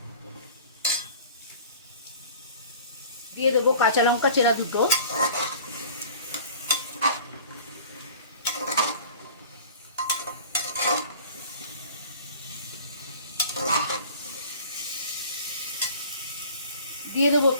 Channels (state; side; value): inverted; both; correlation -0.45